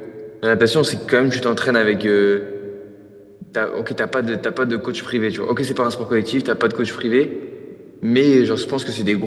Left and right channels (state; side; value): identical; both; correlation 1.00